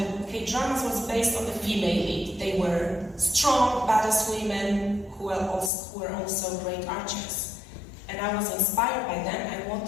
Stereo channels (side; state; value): right; drops out; at 5.7 s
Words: K-dramas was based on the female lead. They were strong, badass women who were also great archers. And I was inspired by them. I